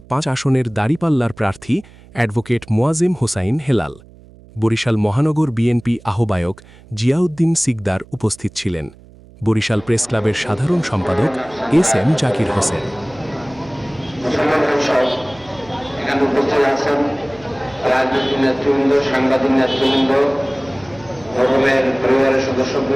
৫ আসনের দাঁড়িপাল্লার প্রার্থী অ্যাডভোকেট মোয়াজেম হোসাইন হেলাল। বরিশাল মহানগর বিএনপি আহ্বায়ক জিয়াউদ্দিন সিকদার উপস্থিত ছিলেন। বরিশাল প্রেস ক্লাবের সাধারণ সম্পাদক এস এম জাকির হোসেন। এখানে উপস্থিত আছেন রাজনৈতিক নেতৃবৃন্দ, সাংবাদিক নেতৃবৃন্দ, ভবনের পরিবারের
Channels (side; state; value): right; noise; hum, 23 dB below the sound